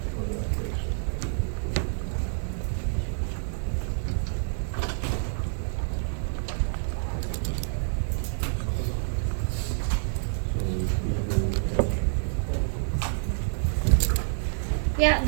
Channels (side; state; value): left; silent; 60 dB below the other